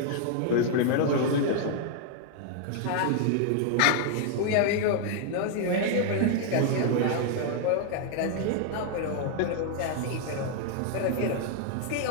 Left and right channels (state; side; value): different; both; correlation -0.01